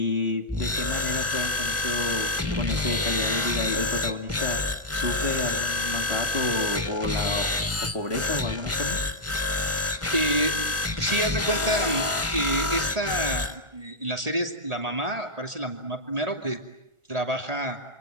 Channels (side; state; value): left; late; 1.4 ms